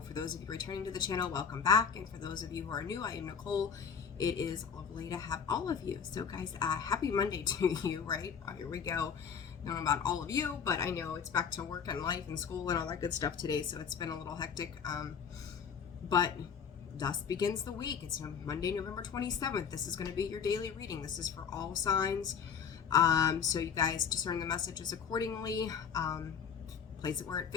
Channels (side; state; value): right; quieter; 6.9 dB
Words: For those of you returning to the channel, welcome back. And for those of you who are new, I am Nicole. It is lovely to have all of you. So guys, happy Monday to you, right? Here we go. I don't know about all of you, but I know it's back to work and life and school and all that good stuff today. So it's been a little hectic. But thus begins the week. It's Monday, November 27th. This is going to be your daily reading. This is for all signs. So you guys discern the messages accordingly. Place it where it